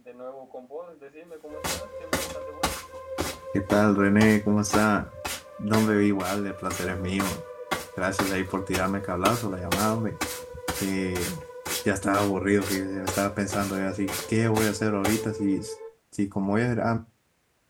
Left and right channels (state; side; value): identical; both; correlation 1.00